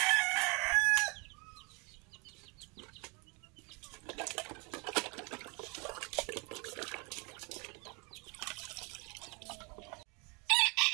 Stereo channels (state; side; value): quieter; left; 30.8 dB